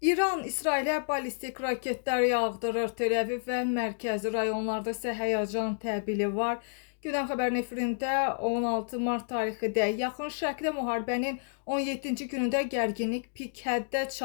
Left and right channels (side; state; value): right; silent; digital silence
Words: İran İsrailə ballistik raketlər yağdırır. Tel-Əviv və mərkəzi rayonlarda isə həyəcan təbili var. Gündəm xəbərin efirində 16 mart tarixində Yaxın Şərqdə müharibənin 17-ci günündə gərginlik pik həddə